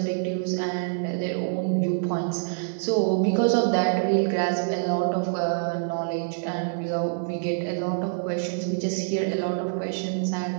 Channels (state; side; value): silent; left; digital silence